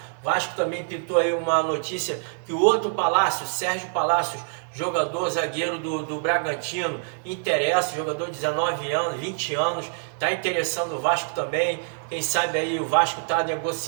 Vasco também pintou aí uma notícia que o outro Palácio, Sérgio Palácios, jogador zagueiro do Bragantino, interessa, jogador de 19 anos, 20 anos, está interessando o Vasco também. Quem sabe aí o Vasco está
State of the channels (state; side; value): silent; left; 62 dB below the other